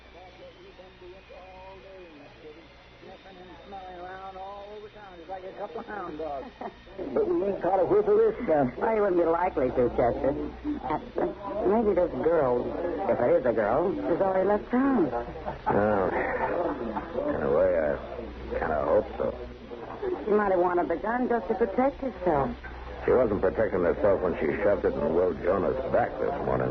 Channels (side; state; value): both; identical; correlation 1.00